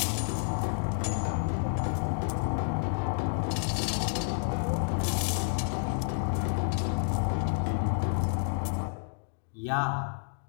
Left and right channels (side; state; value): right; silent; digital silence